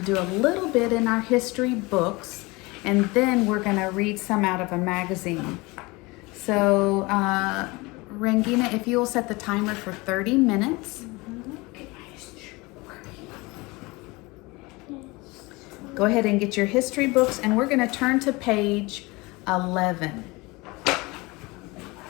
do a little bit in our history books, and then we're going to read some out of a magazine. So, Rangina, if you will set the timer for 30 minutes. Go ahead and get your history books, and we're going to turn to page 11.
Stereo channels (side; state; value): right; quieter; 24.0 dB